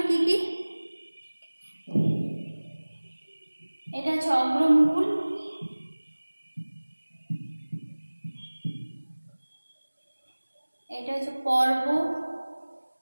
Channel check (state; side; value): inverted; both; correlation -1.00